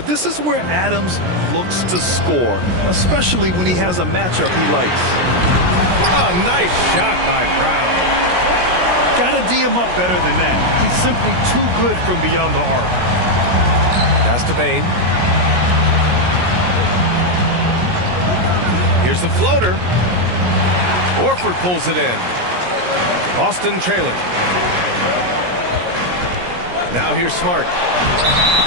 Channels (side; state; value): left; late; 17 ms